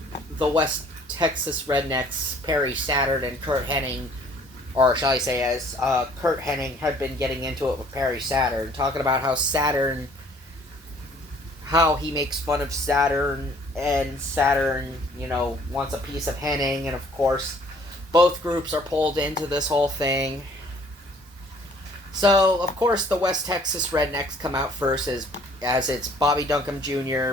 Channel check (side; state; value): both; normal; correlation 0.57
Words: the West Texas Rednecks, Perry Saturn and Kurt Hennig, or shall I say as Kurt Hennig had been getting into it with Perry Saturn, talking about how he makes fun of Saturn, and Saturn, wants a piece of Hennig, and of course, both groups are pulled into this whole thing. So, of course, the West Texas Rednecks come out first as it's Bobby Duncombe